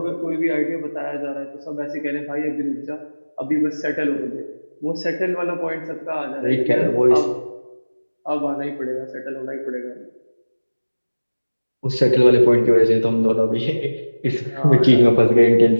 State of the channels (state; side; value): inverted; both; correlation -1.00